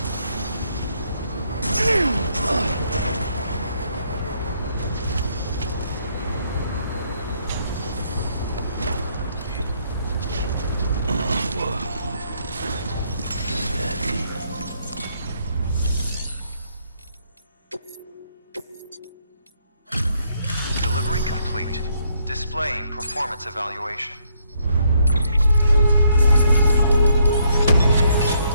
Delivery complete. Displaying performance evaluation.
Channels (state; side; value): inverted; both; correlation -0.71